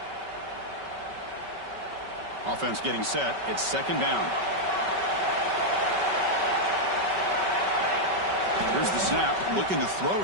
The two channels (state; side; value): late; left; 5.2 ms